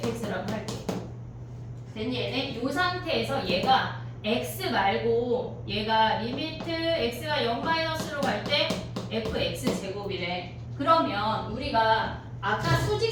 할게. 됐니 얘네? 이 상태에서 얘가 x 말고 얘가 리미트 x가 0 마이너스로 갈 때 fx 제곱이래. 그러면 우리가 아까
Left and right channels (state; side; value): identical; both; correlation 1.00